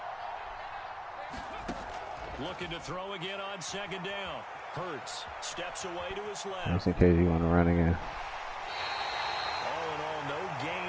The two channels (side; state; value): both; identical; correlation 1.00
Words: Looking to throw again on 2nd down. Hurts steps away to his left. Just in case you want to run again. All in all, no